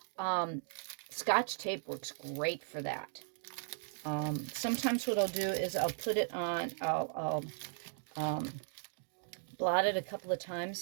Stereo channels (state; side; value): silent; left; digital silence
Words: Scotch tape works great for that. Sometimes what I'll do is I'll put it on, I'll blot it a couple of